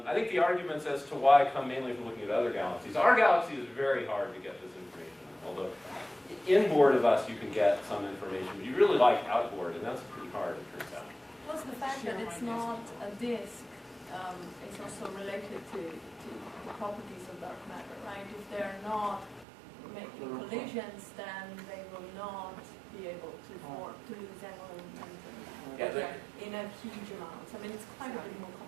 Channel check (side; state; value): left; drops out; at 19.5 s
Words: think the arguments as to why come mainly from looking at other galaxies. Our galaxy is very hard to get this information, although inboard of us you can get some information, but you really like outboard, and that's pretty hard, it turns out. Plus the fact that it's not a disk is also related to the properties of dark matter, right? If they're not making collisions, then they will not be able to form, to lose angular momentum in a huge amount. I mean, it's quite a bit more